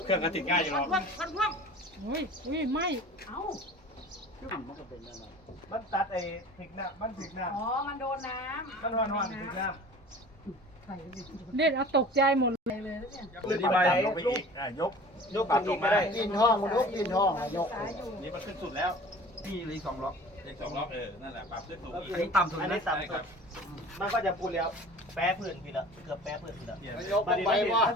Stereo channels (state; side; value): normal; both; correlation 0.43